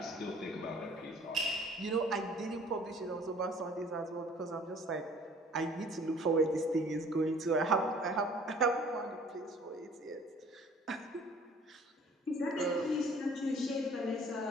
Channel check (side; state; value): both; normal; correlation 0.53